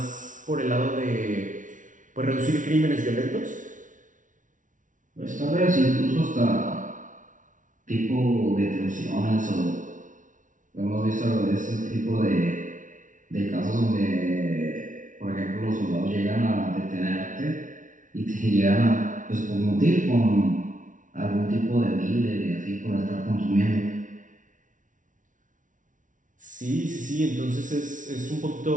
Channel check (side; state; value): left; late; 0.37 ms